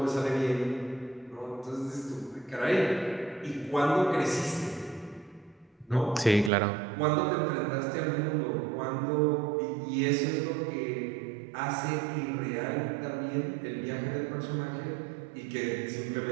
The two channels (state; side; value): drops out; left; at 6.5 s